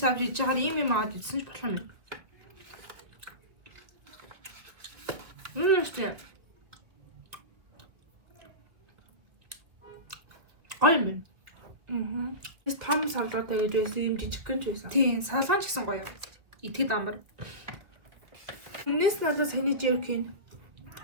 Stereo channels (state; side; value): late; left; 1.8 ms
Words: авч иж чагаар юм аваад идсэн ч болох юм. Үстэй. Аймэн. Эс том салгаатай гэж байсан юм жижиг гэнж байсан. Тийм, салгаан ч гэсэн гоё. Итгэд амар. Энэс надад саний jerky.